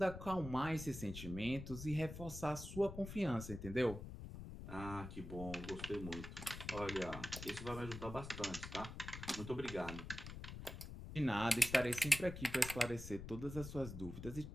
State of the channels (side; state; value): left; noise; rumble, 9 dB below the sound